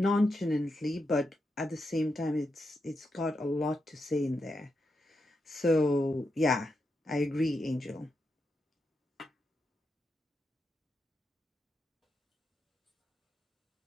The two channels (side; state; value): both; normal; correlation 0.85